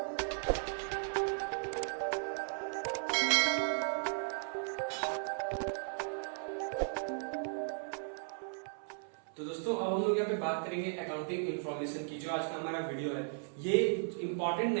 तो दोस्तों अब हम लोग यहाँ पे बात करेंगे अकाउंटिंग इन्फॉर्मेशन की। जो आज का हमारा वीडियो है ये इंपॉर्टेंट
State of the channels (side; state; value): left; silent; 54 dB below the other